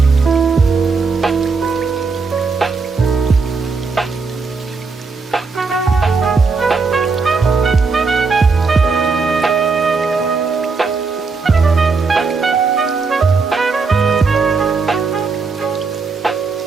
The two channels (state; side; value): quieter; left; 4.5 dB